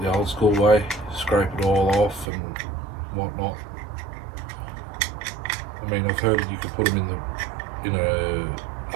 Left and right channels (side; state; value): left; drops out; at 2.2 s